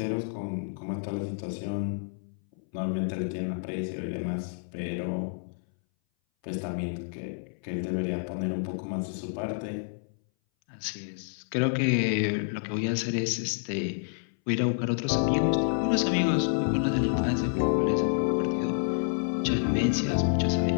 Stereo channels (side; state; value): right; silent; 59 dB below the other